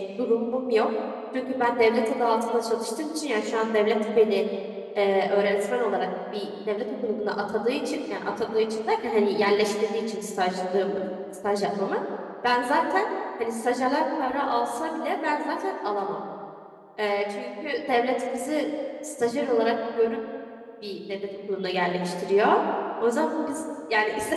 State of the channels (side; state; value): both; identical; correlation 1.00